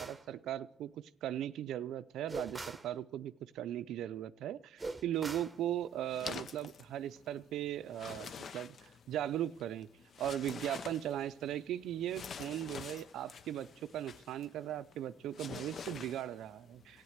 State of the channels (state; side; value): quieter; left; 8.6 dB